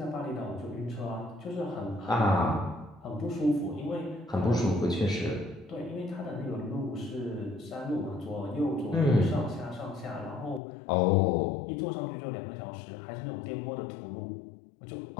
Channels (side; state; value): right; drops out; at 10.6 s